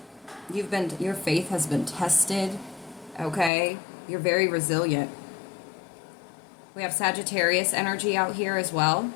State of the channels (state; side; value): drops out; right; at 3.5 s